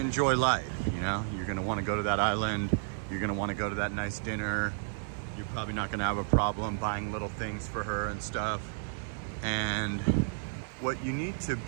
life, you know? You're gonna wanna go to that island. You're gonna wanna go to that nice dinner. You're probably not gonna have a problem buying little things for her and stuff. And what you need to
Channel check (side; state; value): left; silent; digital silence